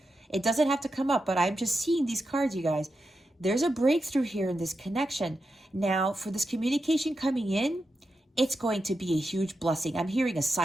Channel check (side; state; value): both; normal; correlation 0.88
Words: It doesn't have to come up, but I'm just seeing these cards, you guys. There's a breakthrough here in this connection. Now, for this communication coming in, it's going to be a huge blessing. I'm hearing a